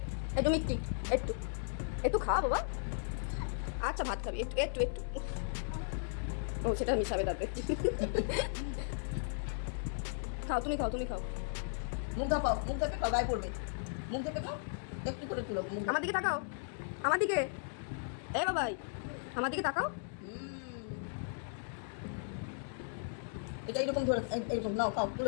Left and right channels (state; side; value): silent; right; digital silence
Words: একটু মিষ্টি, একটু একটু খাওয়া বাবা। আচ্ছা ভাত খাবি, একটু একটু একটু। ও সেটা মিশাবে তাতে। খাও তুমি, খাও তুমি খাও। মুখ ধাপাও, মুখ ধাপে খাও, গায়ে পড়বে। মুখ ধাপে খাও, একটু করে তুলো। আমার দিকে তাকাও, আমার দিকে। এ বাবাই আমার দিকে তাকাও। এটা এরকম ধরে, এরকম নাও, খাও,